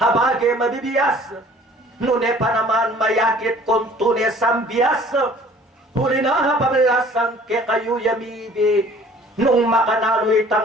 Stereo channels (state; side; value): normal; both; correlation 0.52